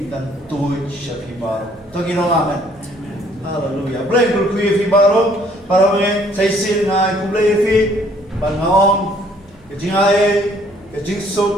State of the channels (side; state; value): both; normal; correlation 0.62